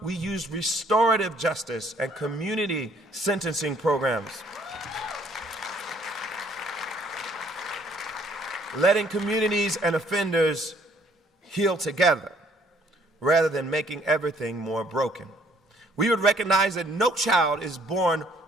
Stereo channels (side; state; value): both; normal; correlation 0.63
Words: we used restorative justice and community sentencing programs, letting communities and offenders heal together rather than making everything more broken. We would recognize that no child is born